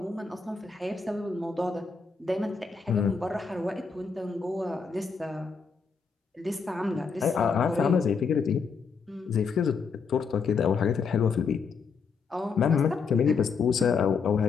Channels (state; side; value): quieter; right; 5.3 dB